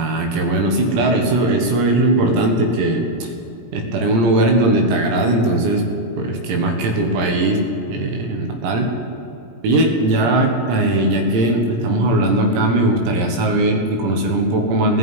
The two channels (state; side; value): late; left; 17 ms